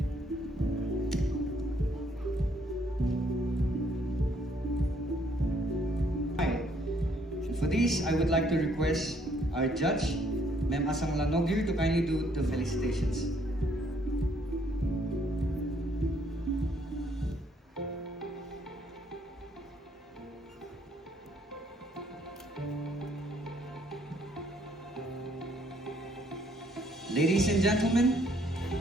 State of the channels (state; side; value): normal; both; correlation 0.67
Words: For this, I would like to request our judge, Ma'am Asang Lanogir, to kindly do the felicitations. Ladies and gentlemen,